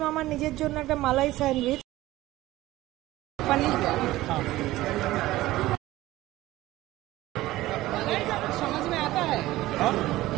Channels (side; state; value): left; quieter; 16.9 dB